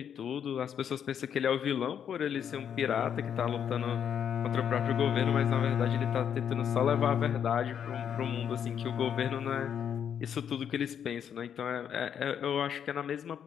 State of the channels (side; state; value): right; quieter; 8.5 dB